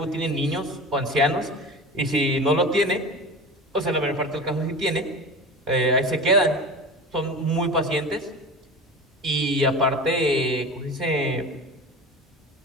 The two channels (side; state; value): both; normal; correlation 0.32